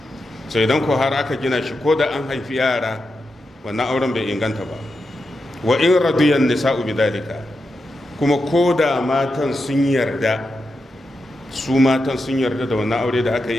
sai idan ko har aka gina shi ko da an haifi yara, wannan auren bai inganta ba. Wa in radiyan nisa'u bidalika, kuma ko da matan sun yarda, su matan sun yarda da wannan aure da aka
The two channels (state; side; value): normal; both; correlation 0.88